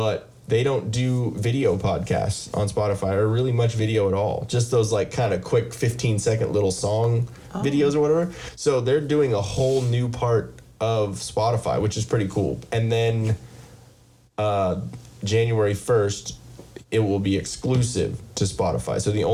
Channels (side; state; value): both; identical; correlation 1.00